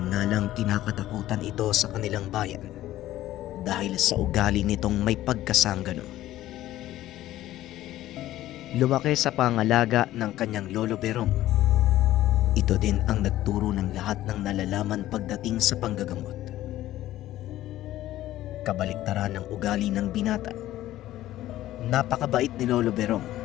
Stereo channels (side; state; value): right; quieter; 14.5 dB